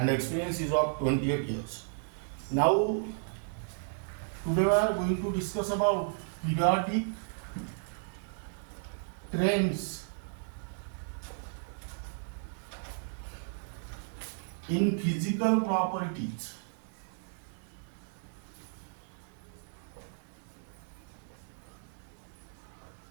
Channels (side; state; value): left; silent; digital silence